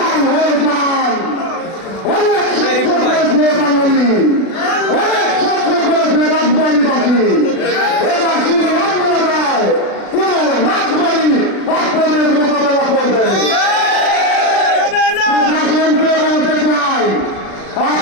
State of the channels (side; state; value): right; late; 36 ms